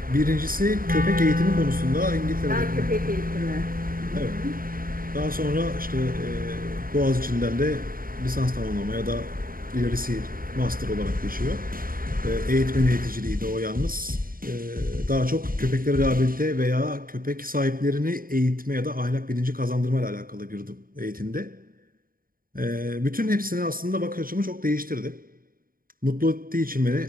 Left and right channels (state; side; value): late; left; 0.41 ms